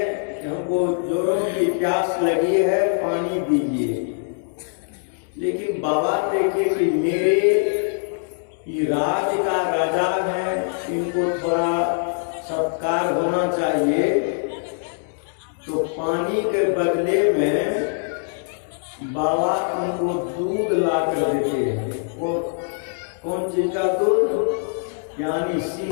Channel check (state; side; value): silent; right; 64 dB below the other